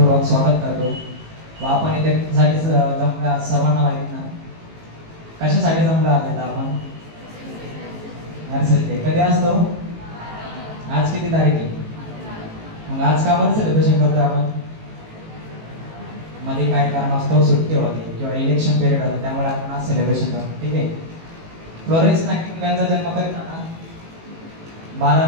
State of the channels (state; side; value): late; left; 18 ms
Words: स्वागत करतो व आपण इथे साठी जमल्या सर्वांना माहिती ना कशासाठी जमलो आहोत आपण नर्सरी डे कधी असतो आज किती तारीख आहे मग आज का बरं सेलिब्रेशन करतो आपण मध्ये काय कारण असतो सुट्टी होती किंवा इलेक्शन पिरियड होतं त्यामुळे आपण आज सेलिब्रेशन करतो ठीक आहे फ्लोरेन्स नायटिंगेल यांचा जन्म कधी झाला 12